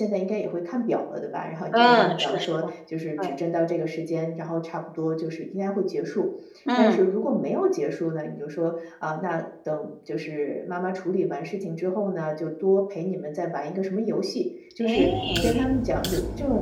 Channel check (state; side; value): identical; both; correlation 1.00